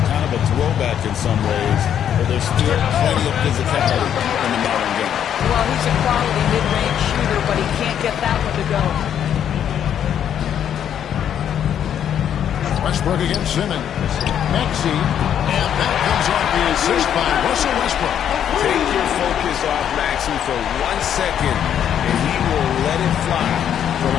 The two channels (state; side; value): quieter; right; 9.4 dB